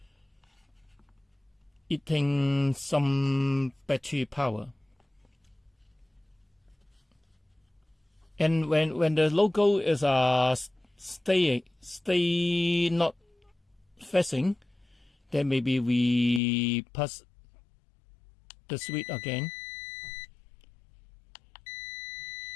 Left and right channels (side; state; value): right; drops out; at 16.4 s